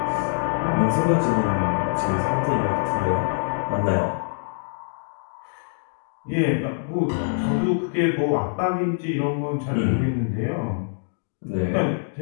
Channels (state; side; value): silent; right; digital silence